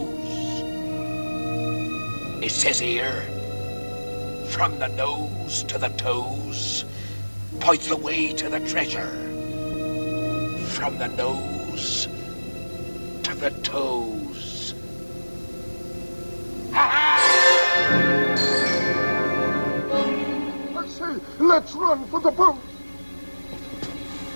It says here, from the nose to the toes, points the way to the treasure. From the nose to the toes. I say, let's run for the boat.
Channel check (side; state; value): both; inverted; correlation -1.00